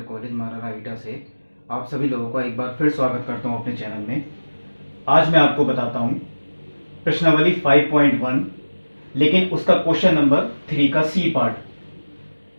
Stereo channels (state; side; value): inverted; both; correlation -1.00